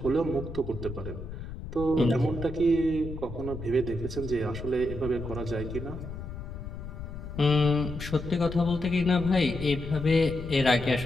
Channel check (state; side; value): noise; left; rumble, 9 dB below the sound